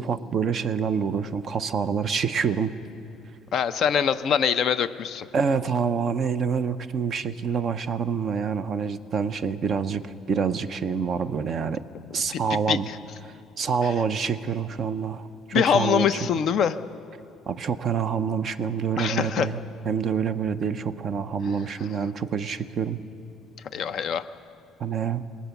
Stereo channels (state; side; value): normal; both; correlation 0.57